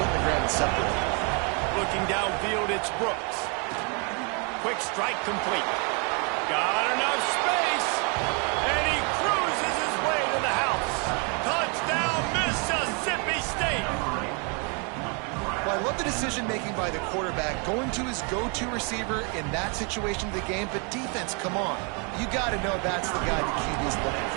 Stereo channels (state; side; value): quieter; left; 35.1 dB